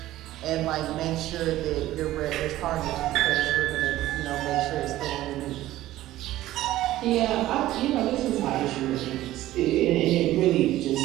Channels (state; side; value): quieter; left; 15.2 dB